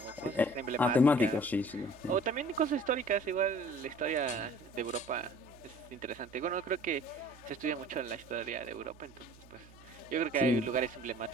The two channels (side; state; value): right; noise; hum, 23 dB below the sound